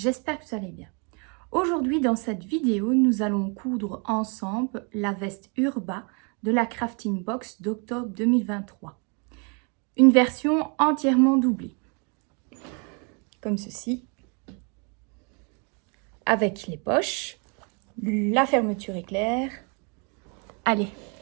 que vous allez bien. Aujourd'hui dans cette vidéo, nous allons coudre ensemble la veste Urba de la Crafting Box d'octobre 2023. Une version entièrement doublée, comme ceci, avec les poches, la fermeture éclair. Allez,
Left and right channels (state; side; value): quieter; left; 35.4 dB